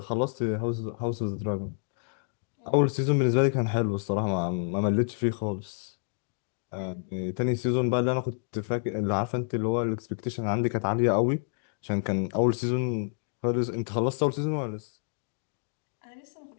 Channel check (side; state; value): right; silent; digital silence